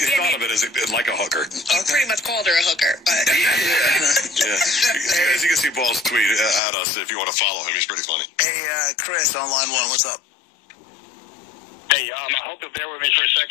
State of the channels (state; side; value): drops out; right; at 6.6 s